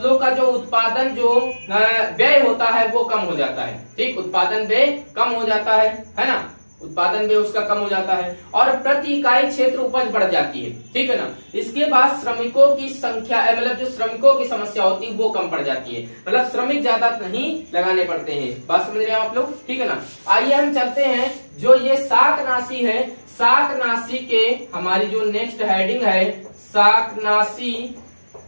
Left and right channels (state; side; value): inverted; both; correlation -1.00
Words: का जो उत्पादन जो व्यय होता है वो कम हो जाता है। ठीक, उत्पादन व्यय कम हो जाता है ना। उत्पादन भी उसका कम हो जाता है और प्रति इकाई क्षेत्र उपज बढ़ जाती है, ठीक है ना। इसके बाद श्रमिकों की संख्या मतलब जो श्रमिकों की समस्या होती है वो कम पड़ जाती है, मतलब श्रमिक ज्यादा नहीं लगाने पड़ते हैं। बात समझ रहे हैं आप लोग, ठीक है ना। आइए हम चलते हैं जो ये शाकनाशी है, शाकनाशी के हमारी जो नेक्स्ट हेडिंग है